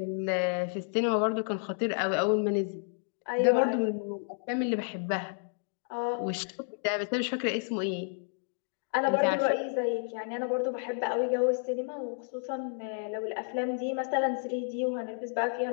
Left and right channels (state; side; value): silent; right; digital silence